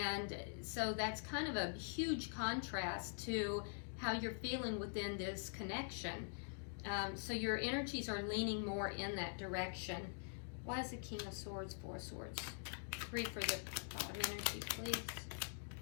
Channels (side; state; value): right; silent; digital silence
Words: so that's kind of a huge contrast to how you're feeling within this connection. So your energies are leaning more in that direction. Why is the King of Swords, Four of Swords? 3 for the bottom energy, please.